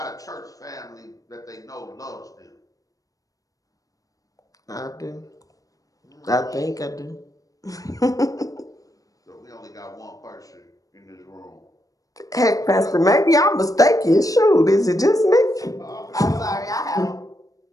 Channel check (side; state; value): right; late; 0.17 ms